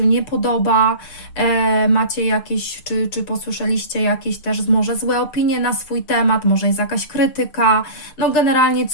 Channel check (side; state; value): right; late; 6.7 ms